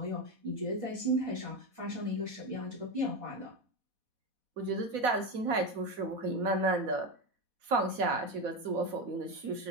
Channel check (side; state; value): left; late; 4.1 ms